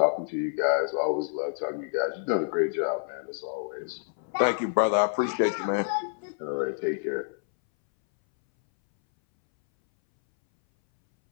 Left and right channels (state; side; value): silent; right; 59 dB below the other